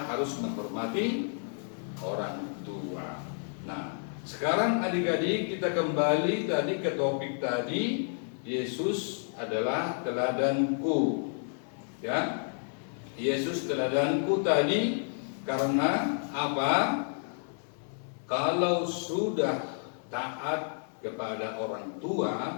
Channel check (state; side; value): silent; right; 57 dB below the other